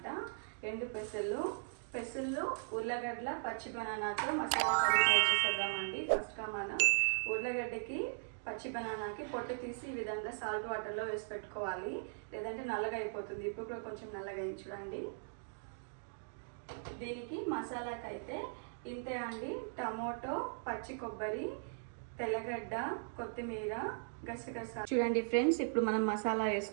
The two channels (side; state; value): left; silent; digital silence